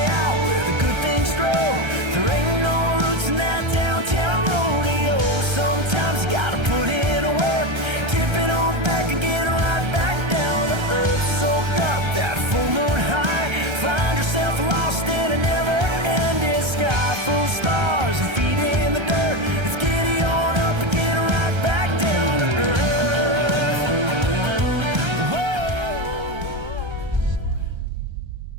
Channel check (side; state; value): left; late; 1.3 ms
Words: Sometimes you gotta put in a work, tip it on back and get right back down to earth. Soak up that full moon high, find yourself lost in a never-ending sky, full of stars and feet in the dirt. Let's giddy on up and get right back down to earth. Whoa.